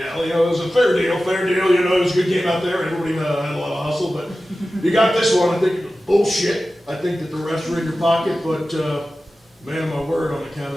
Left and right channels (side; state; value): both; normal; correlation 0.95